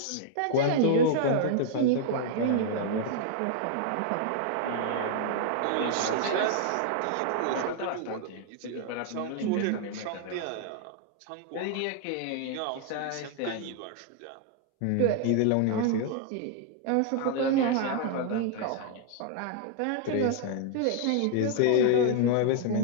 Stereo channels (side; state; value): both; different; correlation 0.00